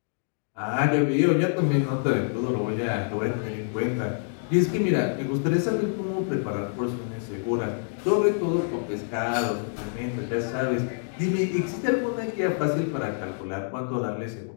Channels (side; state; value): right; silent; digital silence